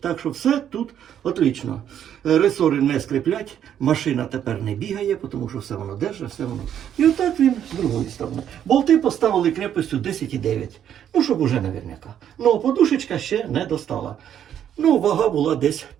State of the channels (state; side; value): quieter; left; 9.8 dB